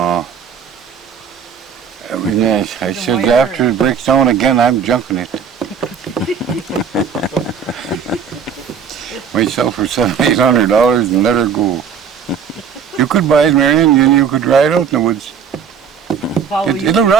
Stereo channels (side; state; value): left; quieter; 6.9 dB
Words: I mean, I said after it breaks down again, I'm junking it. Myself for $700-800 and let her go. You could buy it, Marion, and you could ride out in the woods. It'll